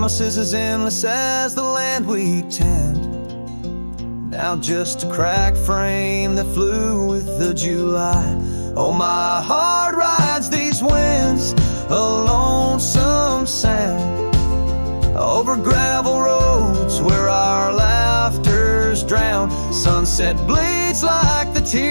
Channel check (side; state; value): both; inverted; correlation -1.00